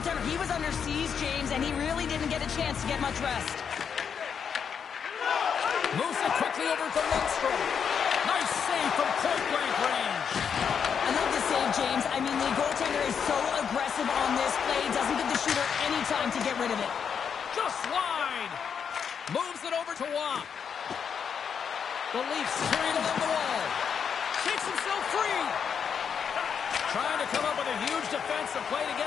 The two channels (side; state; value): right; quieter; 7.1 dB